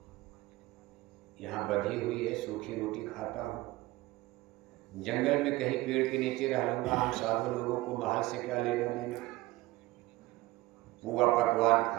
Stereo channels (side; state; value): left; quieter; 18.9 dB